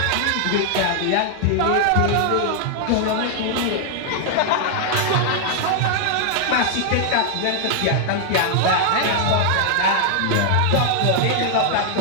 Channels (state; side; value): different; both; correlation 0.00